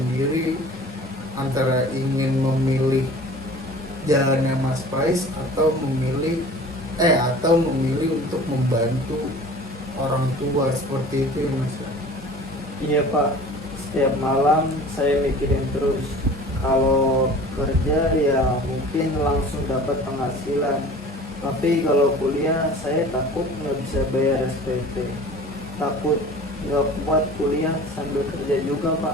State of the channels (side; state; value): both; normal; correlation 0.43